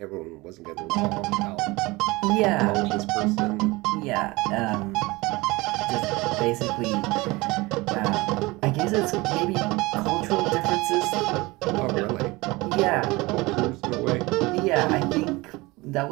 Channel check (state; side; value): quieter; left; 22.4 dB